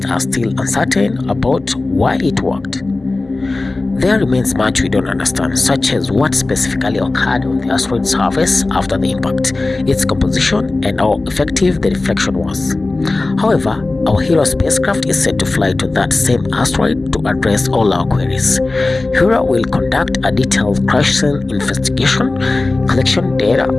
are still uncertain about why it worked. There remains much we don't understand, such as what specifically occurred on the asteroid's surface after the impact, its composition, and how effective the deflection was. However, our Hera spacecraft is set to fly to that same asteroid to address all our queries. Hera will conduct a detailed crash scene investigation, collection data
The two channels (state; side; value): quieter; right; 3.2 dB